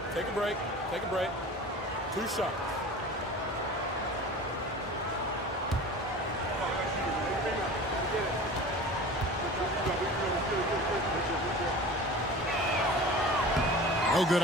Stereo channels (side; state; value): both; normal; correlation 0.37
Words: Take a break. Take a break. 2 shots. No good